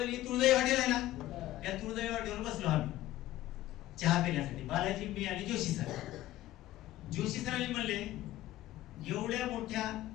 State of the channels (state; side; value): quieter; right; 15.1 dB